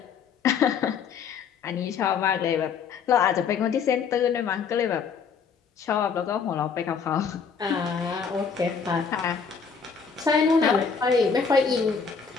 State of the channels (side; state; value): right; quieter; 6.1 dB